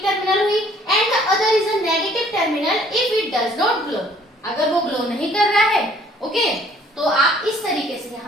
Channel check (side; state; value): both; normal; correlation 0.59